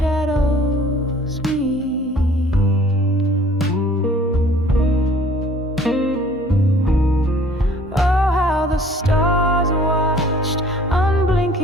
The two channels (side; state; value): both; normal; correlation 0.54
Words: meet. Oh, how the stars watched,